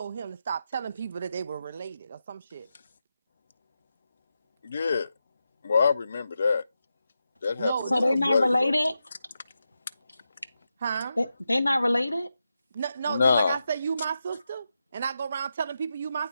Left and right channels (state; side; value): inverted; both; correlation -0.88